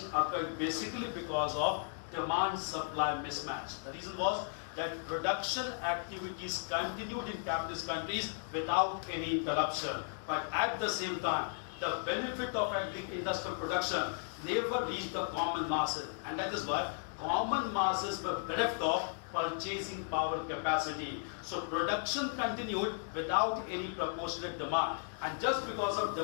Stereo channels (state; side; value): silent; right; digital silence